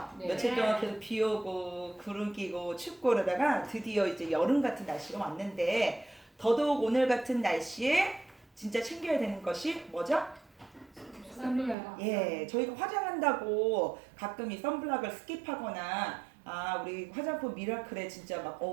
네. 며칠 동안 계속 비 오고 구름 끼고 춥고 그러다가 드디어 이제 여름 같은 날씨가 왔는데 더더욱 오늘 같은 날씨에 진짜 챙겨야 되는 것이 뭐죠? 선블락. 예, 저희가 화장한다고 가끔 이 선블락을 스킵하거나 우리 화장품 미라클에 진짜 막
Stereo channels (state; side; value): drops out; left; at 11.8 s